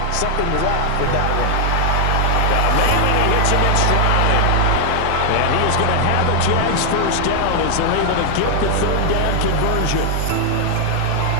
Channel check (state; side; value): different; both; correlation 0.00